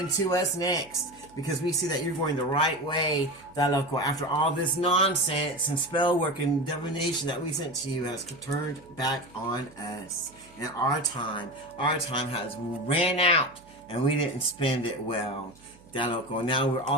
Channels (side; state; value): right; noise; hum, 26 dB below the sound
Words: to us next. Because we see that you're going the right way, after all this nonsense and spell work and divination that we sent to you has turned back on us. And our time has ran out, and we didn't spend it well. Now we're